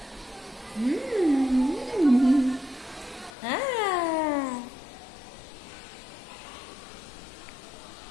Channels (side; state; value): right; drops out; at 3.3 s